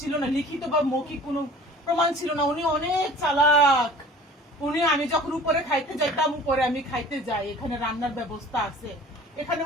না, লিখিত বা মৌখিক কোনো প্রমাণ ছিল না। উনি অনেক চালাক। উনি, আমি যখন উপরে খাইতে যাইতাম, উপরে আমি খাইতে যাই, এখানে রান্নার ব্যবস্থা আছে, এখানে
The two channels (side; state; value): both; normal; correlation 0.45